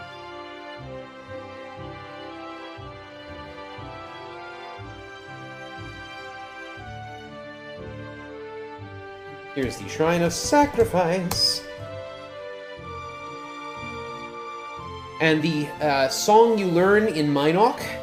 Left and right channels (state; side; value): identical; both; correlation 1.00